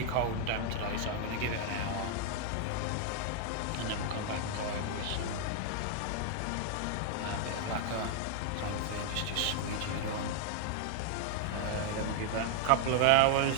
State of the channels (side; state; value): both; different; correlation 0.00